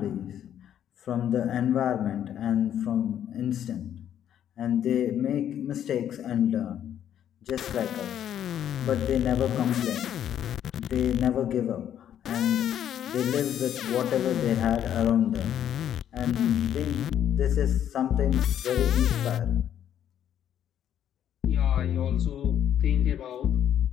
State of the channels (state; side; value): quieter; right; 10.1 dB